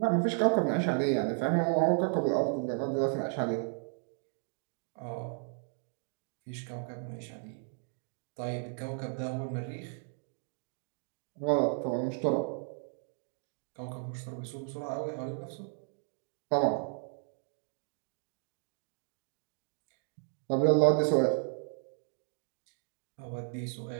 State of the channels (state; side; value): silent; left; 55 dB below the other